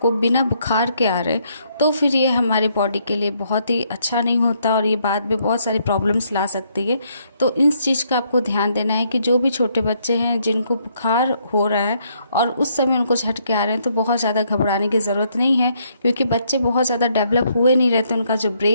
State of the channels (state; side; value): inverted; both; correlation -0.71